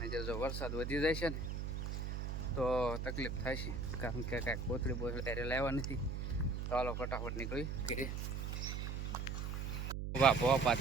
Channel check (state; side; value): noise; right; hum, 3 dB below the sound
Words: જો વરસાદ વધી જાય છે ને તો તકલીફ થાય છે, કારણ કે કાંઈક કોથળી ત્યારે લાવવા નથી. તો હાલો ફટાફટ નીકળી ઘરે. વાહ ભવા